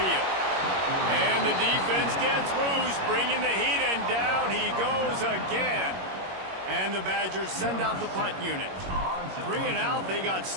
And the defense gets loose, bringing the heat, and down he goes again. And the Badgers send out the punt unit. 3 and out, they got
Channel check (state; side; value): late; left; 21 ms